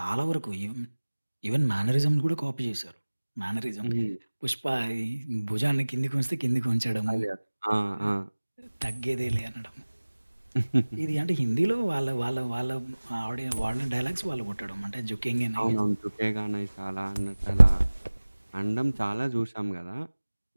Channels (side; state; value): both; inverted; correlation -1.00